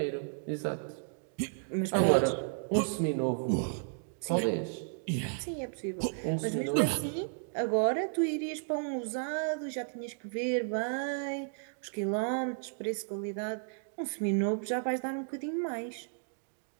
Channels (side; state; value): left; silent; digital silence